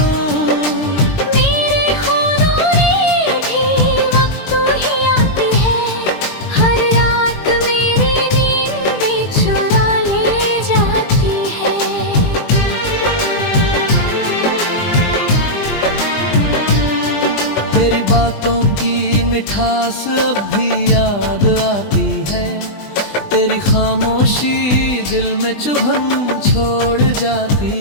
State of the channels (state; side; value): late; right; 20 ms